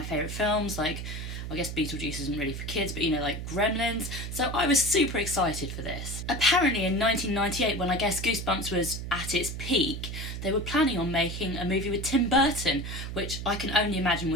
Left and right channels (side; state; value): right; noise; hum, 6 dB below the sound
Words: favourite films, like, I guess Beetlejuice isn't really for kids, but you know, like Gremlins. So I was super excited for this. Apparently in 1998, when I guess Goosebumps was at its peak, they were planning on making a movie with Tim Burton, which I can only imagine